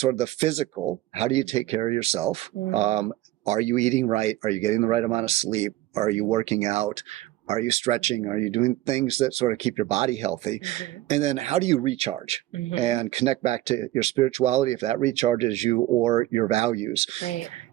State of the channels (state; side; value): quieter; left; 16.0 dB